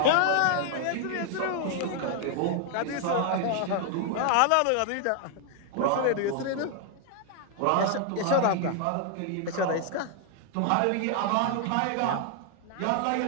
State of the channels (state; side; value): different; both; correlation 0.00